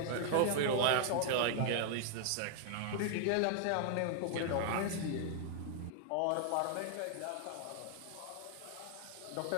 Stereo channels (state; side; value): different; both; correlation 0.00